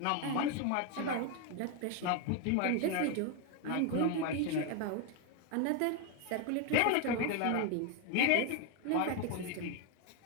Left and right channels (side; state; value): both; different; correlation 0.01